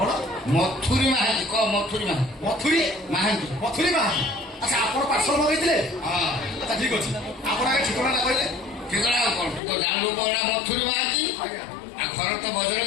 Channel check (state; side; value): drops out; right; at 9.6 s